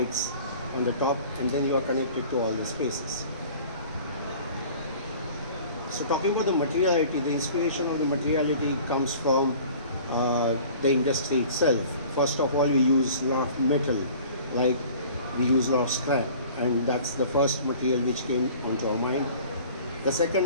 on the top, and then you are connected to all the spaces. So talking about the materiality, the inspiration of the materiality comes from the industry itself. First of all, we use a lot of metal, like we use a lot of scrap, and that's the first material which came onto our mind. The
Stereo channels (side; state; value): both; inverted; correlation -0.47